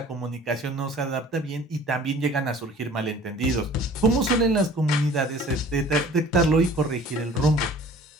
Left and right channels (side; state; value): both; normal; correlation 0.48